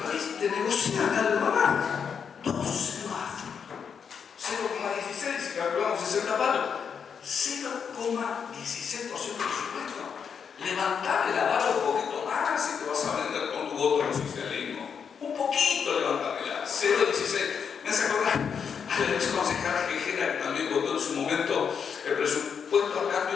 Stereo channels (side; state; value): right; quieter; 6.8 dB